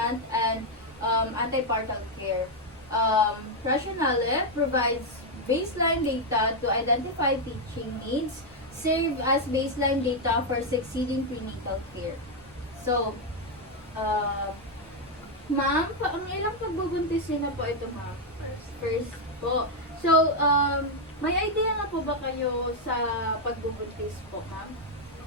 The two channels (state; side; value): normal; both; correlation 0.01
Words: and antepartum care. Rationale provides baseline data to identify teaching needs, serve as baseline data for succeeding prenatal care. So, ma'am, ang ilang pagbubuntisin na po ito, ma'am? First po. So, may idea na po ba kayo sa pagbubuntis po, ma'am?